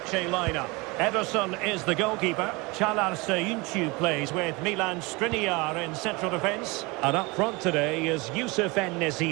lineup. Ederson is the goalkeeper. Çağlar Söyüncü plays with Milan Skriniar in central defence. And up front today is Yusuf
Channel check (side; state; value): left; quieter; 25.6 dB